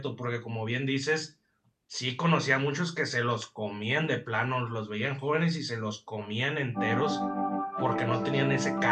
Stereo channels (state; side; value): identical; both; correlation 1.00